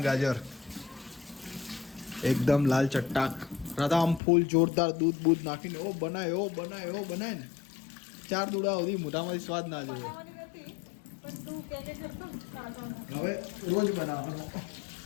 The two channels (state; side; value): drops out; right; at 4.2 s